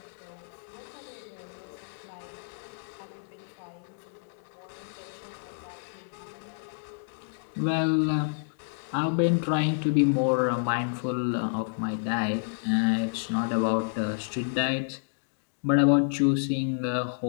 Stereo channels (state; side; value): silent; right; digital silence